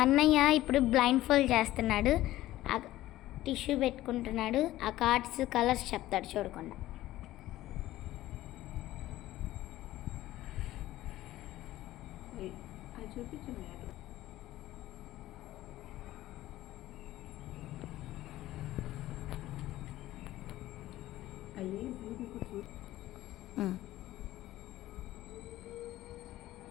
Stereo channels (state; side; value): quieter; right; 15.4 dB